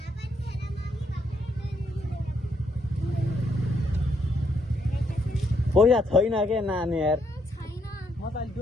पैसा छैन के नानी यार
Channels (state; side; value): normal; both; correlation 0.74